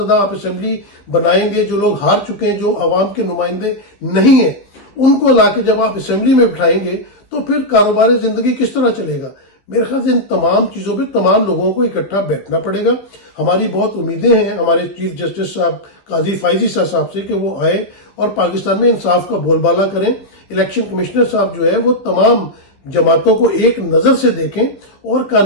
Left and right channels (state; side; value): late; right; 15 ms